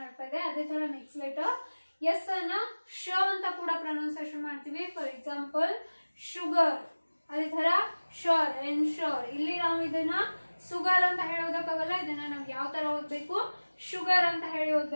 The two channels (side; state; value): both; inverted; correlation -1.00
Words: ಆಗ್ತಾ ಇದೆ. ಅದೇ ತರ ನೆಕ್ಸ್ಟ್ ಲೆಟರ್ ಎಸ್ ಅನ್ನ ಶ ಅಂತ ಕೂಡ ಪ್ರೊನೌನ್ಸಿಯೇಷನ್ ಮಾಡ್ತೀವಿ. ಫಾರ್ ಎಕ್ಸಾಂಪಲ್ ಶುಗರ್, ಅದೇ ತರ ಶೋರ್, ಎನ್ಶೋರ್, ಇಲ್ಲಿ ನಾವು ಇದನ್ನ ಸುಗರ್ ಅಂತ ಹೇಳೋದಕ್ಕಾಗಲ್ಲ, ಇದನ್ನ ನಾವು ಯಾವ ತರ ಓದ್ಬೇಕು, ಶುಗರ್ ಅಂತ ಹೇಳಿ